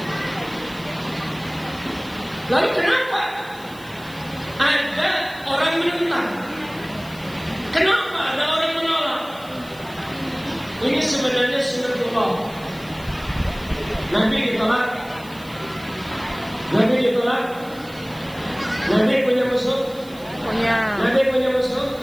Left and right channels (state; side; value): noise; right; hiss, 22 dB below the sound